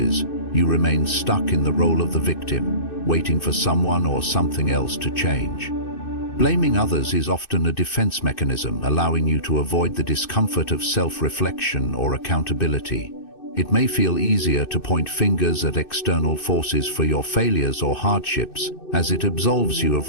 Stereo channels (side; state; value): right; late; 2.6 ms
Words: you remain stuck in the role of the victim, waiting for someone or something else to change. Blaming others is often a defense mechanism, allowing you to avoid the discomfort of self-reflection or accountability. It may feel easier to point fingers at external forces for your failures or hardships, as it absolves you